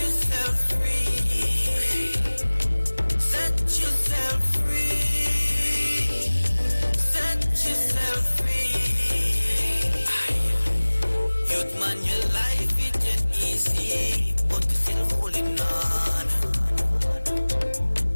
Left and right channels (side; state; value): both; inverted; correlation -1.00